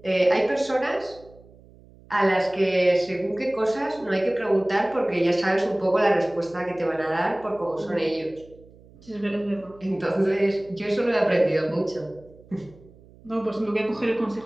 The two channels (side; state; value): right; noise; hum, 25 dB below the sound